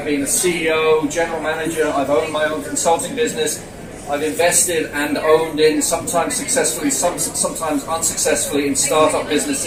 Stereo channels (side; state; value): both; identical; correlation 1.00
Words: been a CEO, general manager. I've owned my own consulting business. I've invested and owned in, sometimes successfully, sometimes unsuccessfully, in startup